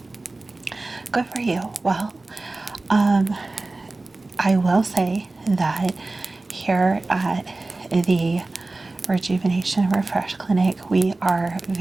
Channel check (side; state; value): left; quieter; 3.2 dB